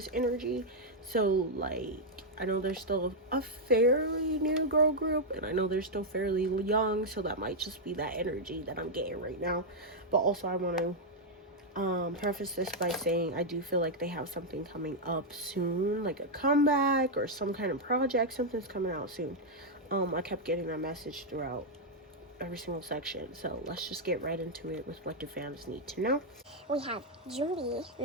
energy. So, like, I know there's still a fairly new girl group, and I know they're still fairly young, so that might just be that energy that I'm getting right now. But also, I want to preface this by saying I do feel like they have something coming up soon, like a comeback or some kind of project. Something's coming out soon. I kept getting that message throughout every single section, so let's just get right into it with what do fans need to know. We have Julie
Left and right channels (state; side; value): normal; both; correlation -0.02